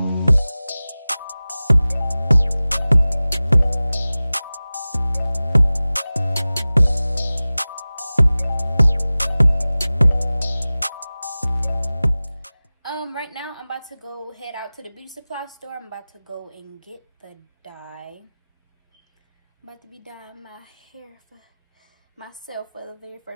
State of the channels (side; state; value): both; inverted; correlation -0.98